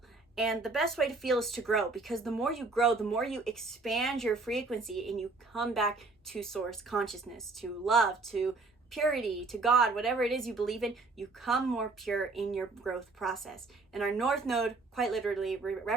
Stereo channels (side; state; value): left; quieter; 3.6 dB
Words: And the best way to feel is to grow, because the more you grow, the more you expand your frequency and you come back to source consciousness, to love, to purity, to God, whatever it is you believe in, you come more pure in your growth process. And our North Node, quite literally,